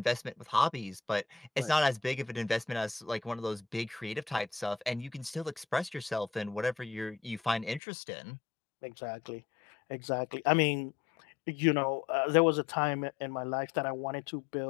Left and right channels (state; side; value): drops out; right; at 7.8 s